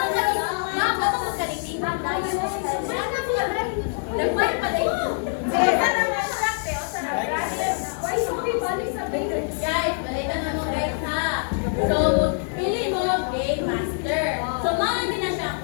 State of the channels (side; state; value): right; silent; 62 dB below the other